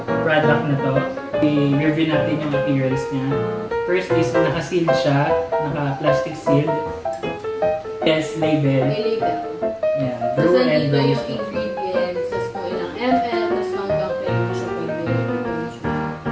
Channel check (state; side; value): identical; both; correlation 1.00